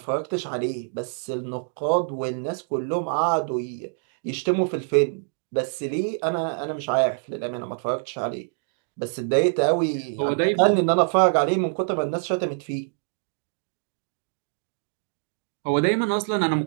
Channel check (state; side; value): silent; left; digital silence